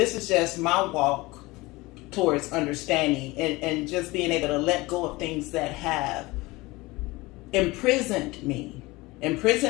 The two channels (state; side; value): quieter; right; 21.7 dB